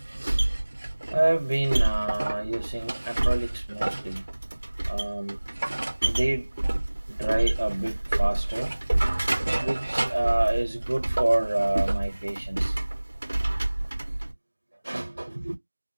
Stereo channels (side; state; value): both; inverted; correlation -1.00